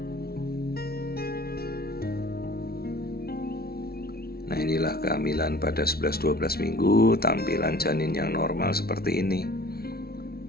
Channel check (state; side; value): late; right; 0.44 ms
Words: Nah, inilah kehamilan pada 11-12 minggu, tampilan janin yang normal seperti ini.